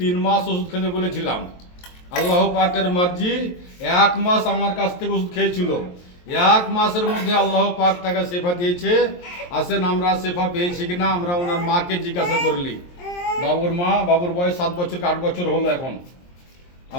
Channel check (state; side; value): late; right; 23 ms